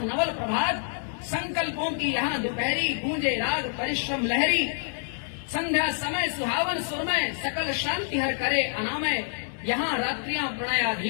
नवल प्रभात। संकल्पों की यहाँ दोपहरी, गूंजे राग परिश्रम लहरी। संध्या समय सुहावन सुरमय, सकल शांति हर करे अनामय। यहाँ रात्रियां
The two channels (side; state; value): right; silent; 60 dB below the other